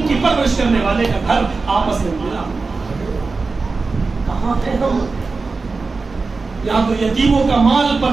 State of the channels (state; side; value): quieter; left; 4.1 dB